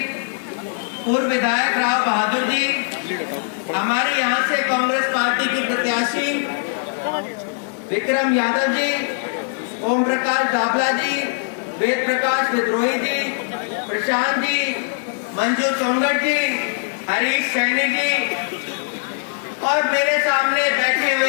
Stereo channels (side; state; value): right; silent; digital silence